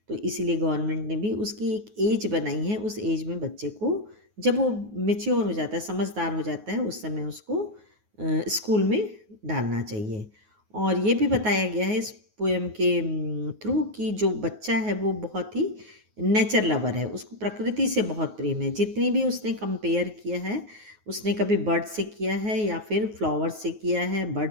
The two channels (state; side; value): late; left; 9.4 ms